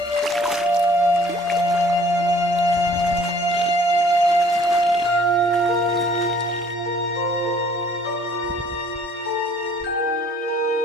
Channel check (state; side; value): normal; both; correlation 0.56